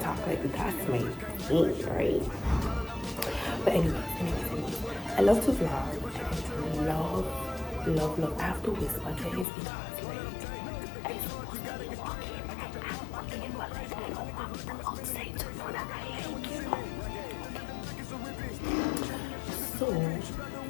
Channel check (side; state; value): right; drops out; at 9.5 s